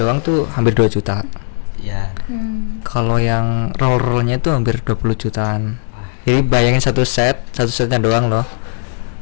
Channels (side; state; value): right; silent; digital silence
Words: tuh hampir 2 juta. Ya. Kalau yang roll-rollnya tuh hampir 20 jutaan. Jadi bayangin satu setnya doang loh.